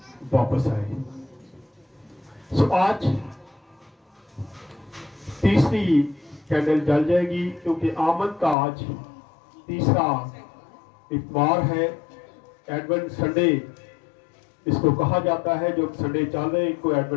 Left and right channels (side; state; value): right; drops out; at 8.6 s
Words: वापस आए। आज तीसरी कैंडल जल जाएगी, क्योंकि आमद का आज तीसरा इतवार है। एडवेंट संडे इसको कहा जाता है, जो संडे चल रहे इनको